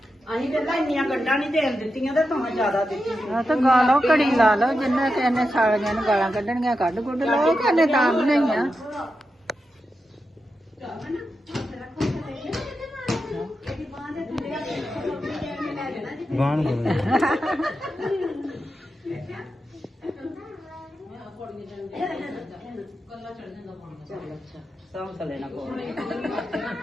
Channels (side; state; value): both; normal; correlation 0.89